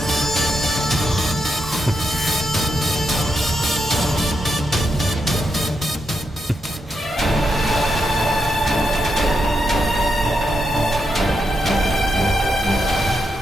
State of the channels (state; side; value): normal; both; correlation 0.83